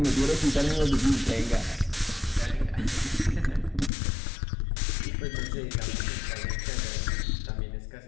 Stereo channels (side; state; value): right; drops out; at 3.9 s